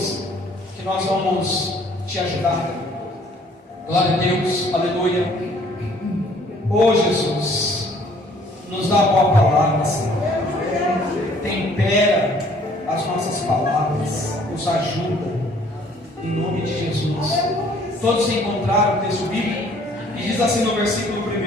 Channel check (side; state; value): both; normal; correlation 0.58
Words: que nós vamos te ajudar. Glória a Deus, aleluia. Oh Jesus, nos dá a boa palavra, Senhor. Tempera as nossas palavras, nos ajuda, em nome de Jesus. Todos encontraram o texto bíblico? E diz assim no versículo 1: